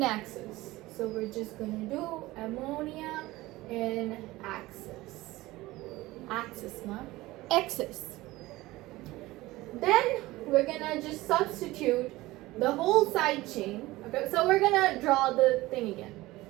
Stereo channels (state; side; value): quieter; left; 18.9 dB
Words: axis. So we're just gonna do ammonia in axis. Axis, not axis. Then we're gonna just substitute the whole side chain. Okay, so we're gonna draw the thing again.